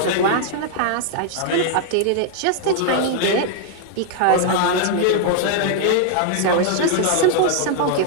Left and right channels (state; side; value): different; both; correlation 0.00